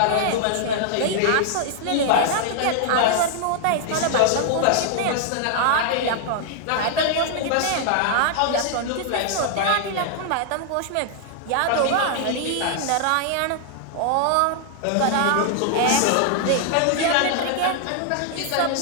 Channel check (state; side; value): different; both; correlation 0.00